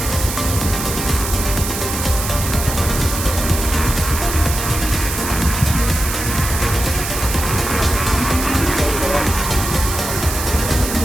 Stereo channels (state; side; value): noise; right; hiss, 5 dB below the sound